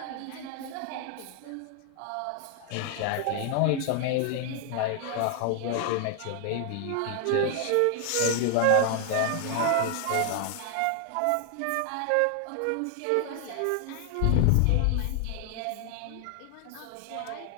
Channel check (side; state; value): both; different; correlation 0.00